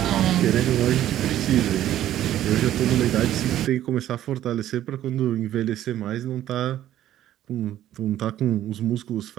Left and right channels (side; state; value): left; quieter; 12.4 dB